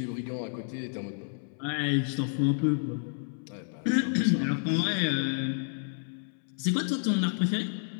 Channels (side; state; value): right; silent; 58 dB below the other